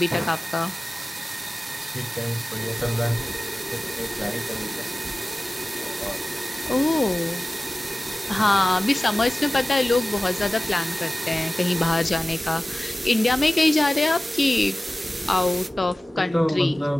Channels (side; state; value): both; normal; correlation 0.97